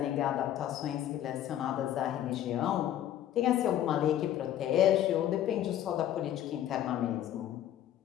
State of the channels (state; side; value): quieter; right; 11.6 dB